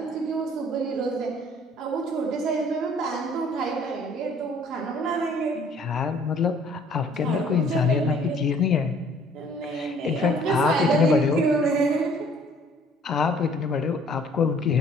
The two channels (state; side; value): normal; both; correlation 0.57